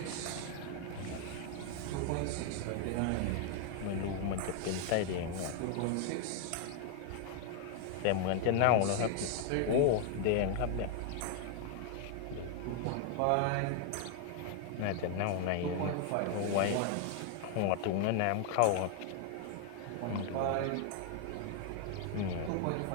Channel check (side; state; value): both; different; correlation 0.00